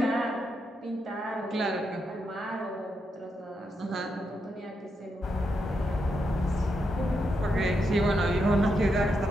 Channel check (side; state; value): both; normal; correlation 0.83